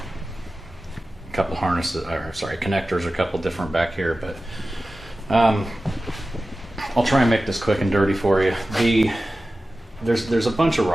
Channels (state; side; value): normal; both; correlation 0.95